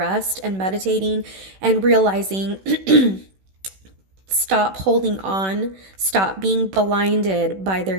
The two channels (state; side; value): late; left; 16 ms